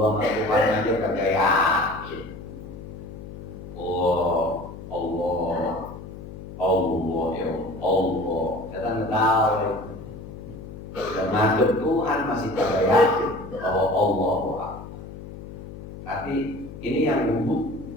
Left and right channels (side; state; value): left; noise; hum, 13 dB below the sound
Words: sama Tuhan aja kagak yakin. Oh Allah ya Allah. Setan tertawa. Dan ngadep Tuhan masih kagak yakin bahwa Allah. Tapi ini yang wudu,